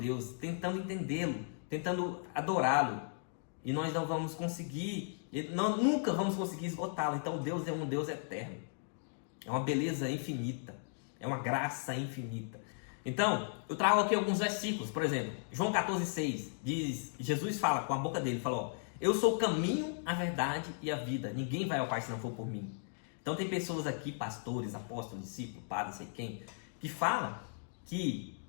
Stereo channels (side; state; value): right; silent; digital silence